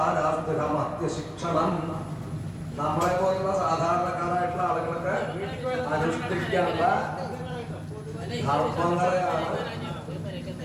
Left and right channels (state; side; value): identical; both; correlation 1.00